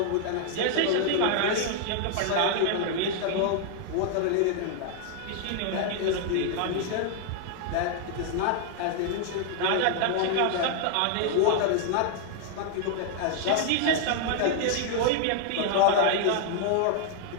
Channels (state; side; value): different; both; correlation 0.00